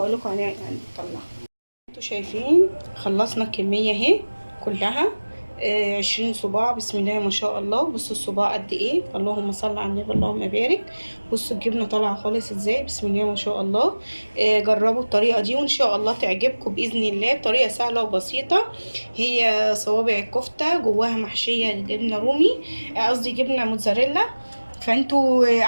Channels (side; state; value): both; inverted; correlation -1.00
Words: لكم هنطلعه. انتوا شايفين خلصنا الكميه اهي كلها. 20 صباع. بسم الله ما شاء الله. بصوا الصباع قد ايه، اللهم صل على النبي اللهم بارك. بصوا الجبنه طالعه خالص ازاي، بسم الله ما شاء الله. جربوا الطريقه دي وان شاء الله تعجبكم باذن الله. طريقه سهله وبسيطه. هي صوابع الكفته جواها محشيه جبنه رومي، قصدي جبنه موتزاريلا. فانتوا